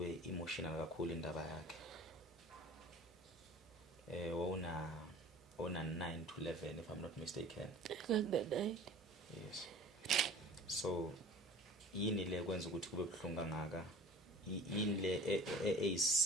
emotional kakhulu indaba yakhe. Wona 9 to 11 if I'm not mistaken. nganga 9. Yes. So yini le kwenza ukuthi kube buhlungu kangaka? Yini le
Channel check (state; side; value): normal; both; correlation 0.44